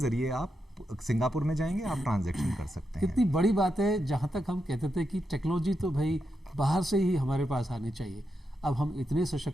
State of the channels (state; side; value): normal; both; correlation 0.85